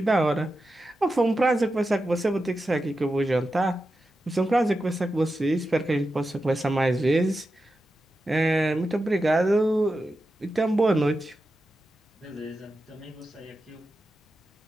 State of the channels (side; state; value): both; normal; correlation 0.90